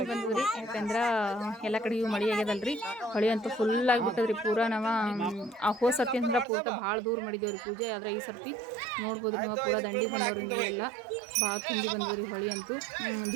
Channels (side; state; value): left; drops out; at 6.5 s